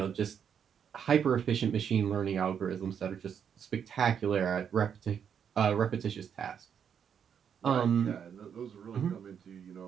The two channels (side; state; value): left; quieter; 7.8 dB